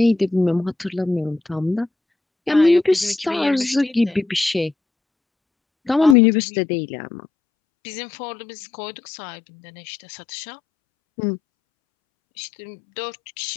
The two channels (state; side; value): drops out; right; at 6.2 s